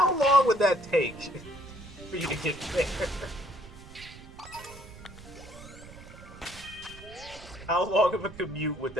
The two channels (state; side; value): noise; right; rumble, 17 dB below the sound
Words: long would that take for you to get there? How long of a commute would